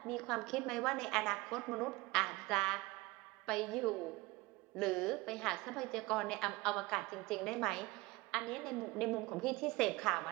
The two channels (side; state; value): left; quieter; 22.0 dB